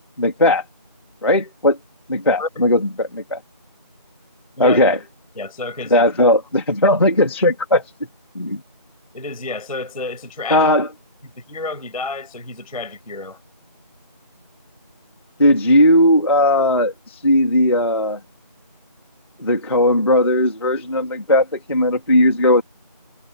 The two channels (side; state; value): both; inverted; correlation -0.37